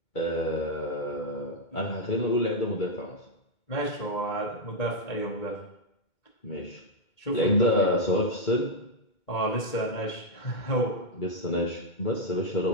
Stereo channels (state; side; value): late; right; 2.2 ms